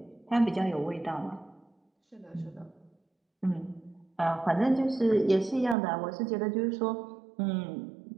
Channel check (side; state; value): left; drops out; at 5.8 s